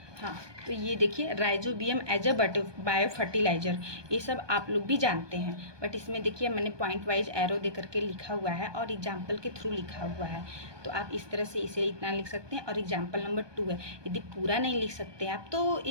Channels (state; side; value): late; left; 1.2 ms